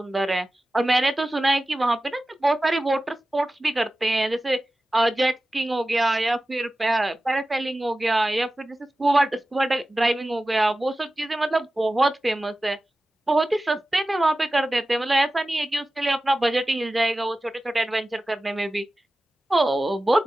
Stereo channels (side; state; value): both; normal; correlation 0.95